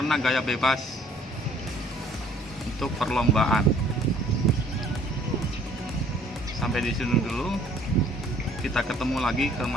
gaya bebas untuk perlombaan. Sampai di sini dulu. Kita ketemu lagi ke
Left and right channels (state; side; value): normal; both; correlation 0.57